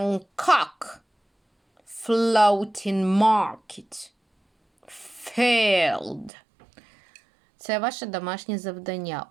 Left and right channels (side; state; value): left; drops out; at 6.3 s